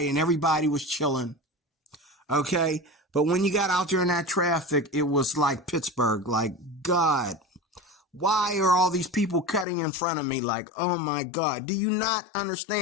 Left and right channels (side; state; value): right; drops out; at 9.7 s